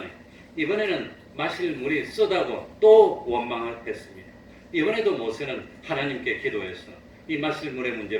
이번에는 마실 물이 쓰다고 또 원망했습니다. 이번에도 모세는 하나님께 기도해서 이 마실 물의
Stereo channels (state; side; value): identical; both; correlation 1.00